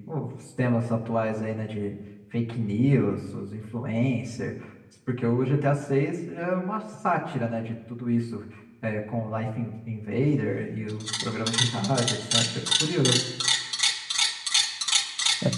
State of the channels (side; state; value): both; identical; correlation 1.00